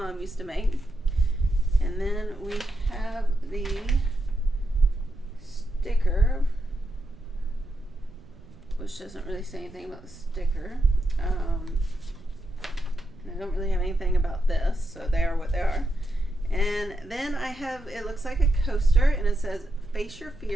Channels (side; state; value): right; noise; rumble, 21 dB below the sound